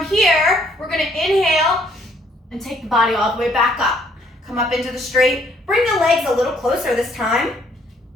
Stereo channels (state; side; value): normal; both; correlation 0.65